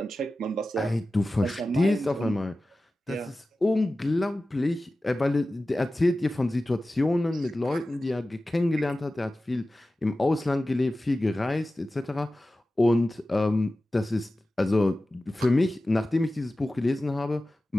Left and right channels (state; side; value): normal; both; correlation 0.95